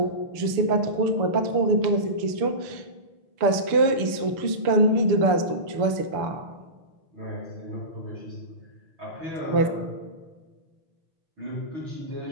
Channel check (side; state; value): left; late; 6.9 ms